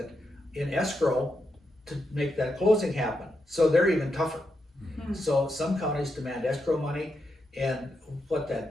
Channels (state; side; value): normal; both; correlation 0.84